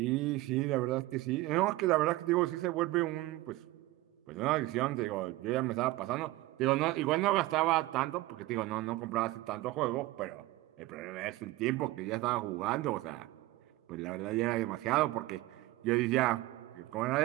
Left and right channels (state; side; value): quieter; left; 18.3 dB